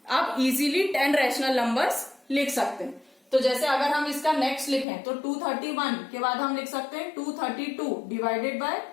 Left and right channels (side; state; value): right; drops out; at 4.9 s